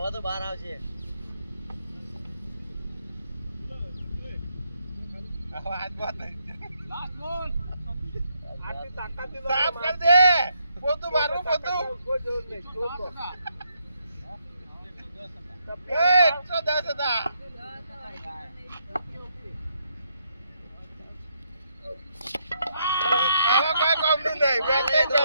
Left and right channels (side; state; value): both; inverted; correlation -0.76